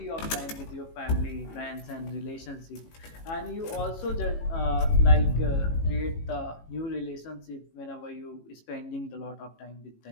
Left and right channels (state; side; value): late; right; 18 ms